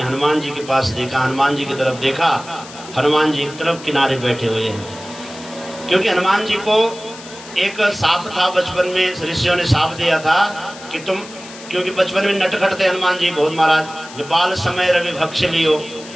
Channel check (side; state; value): left; noise; hiss, 16 dB below the sound